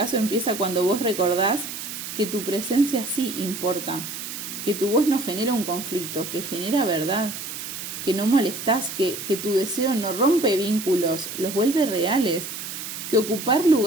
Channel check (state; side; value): noise; right; hiss, 8 dB below the sound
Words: empieza cuando vos recordás que tu presencia sí importa, que tu voz no genera un conflicto, que genera verdad, que no molestás, que tu deseo no rompe vínculos, los vuelve reales, que ocupar